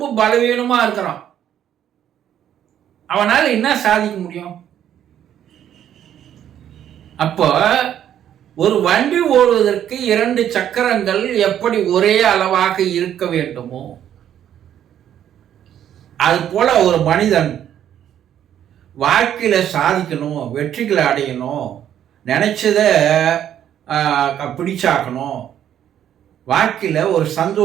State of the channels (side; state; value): left; quieter; 10.3 dB